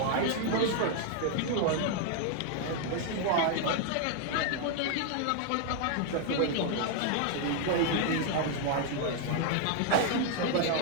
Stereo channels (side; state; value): both; different; correlation 0.00